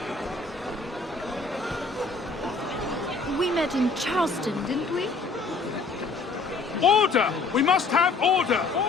We met in Charleston, didn't we? Order! We must have order!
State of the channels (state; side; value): quieter; right; 4.0 dB